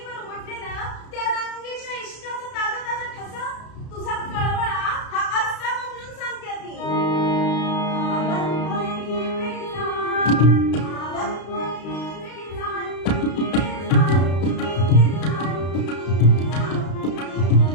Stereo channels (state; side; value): late; right; 32 ms